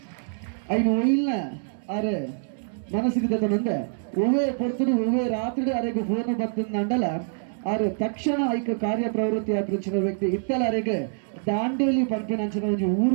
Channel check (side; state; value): left; silent; 61 dB below the other